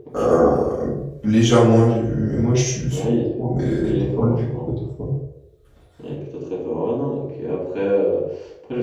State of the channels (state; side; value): identical; both; correlation 1.00